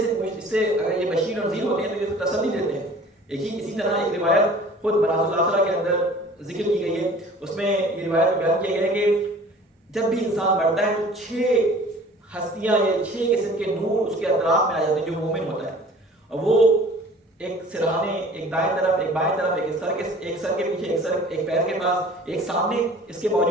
اس سے اگر یہ بشیر اور نذیر ہوتے ہیں تو یہ تسلی دیتے ہیں. اسی طرح ایک روایت خود مناظر الاخرہ کے اندر ذکر کی گئی ہے. اس میں یہ روایت بیان کیا گیا ہے کہ جب بھی انسان مرتا ہے تو 6 ہستیاں یا 6 قسم کے نور اس کے اطراف میں آ جاتے ہیں جو مومن ہوتا ہے. اور وہ ایک سرہانے، ایک دائیں طرف، ایک بائیں طرف، ایک سر کے پیچھے، ایک پیر کے پاس، ایک سامنے اس کے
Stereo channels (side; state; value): both; normal; correlation 0.47